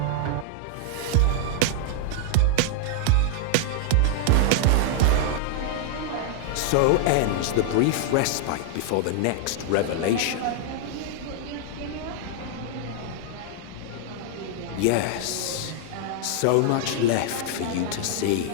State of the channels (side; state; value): both; different; correlation -0.01